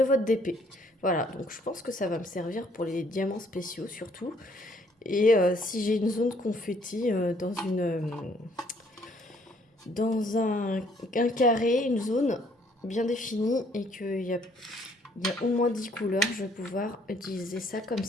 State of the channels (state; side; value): normal; both; correlation 0.64